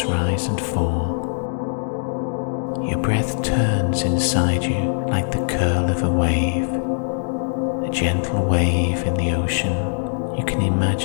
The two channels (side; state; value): right; silent; digital silence